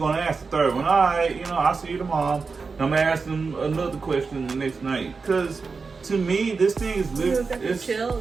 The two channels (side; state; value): left; quieter; 4.7 dB